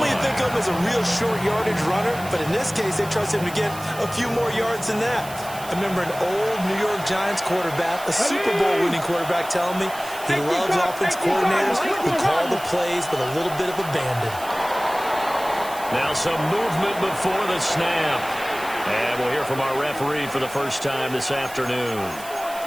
you think of him as a real short yardage runner, but in this case they trust him to get a few more yards than that. I remember an old New York Giants quarterback, a Super Bowl winning quarterback, telling me he loves offense coordinators who call the plays with a little bit of abandon. Now some movement before the snap. And we'll hear from our referee for the first time this afternoon.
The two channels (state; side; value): noise; right; hiss, 15 dB below the sound